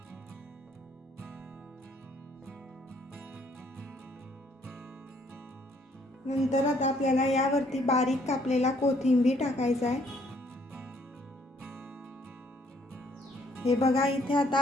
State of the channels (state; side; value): normal; both; correlation 0.65